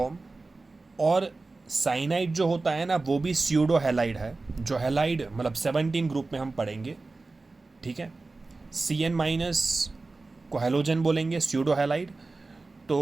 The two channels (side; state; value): left; quieter; 3.5 dB